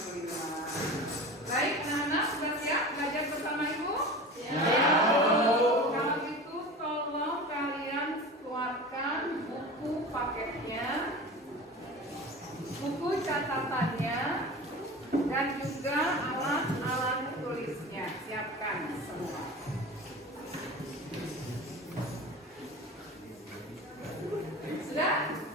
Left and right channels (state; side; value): normal; both; correlation 0.34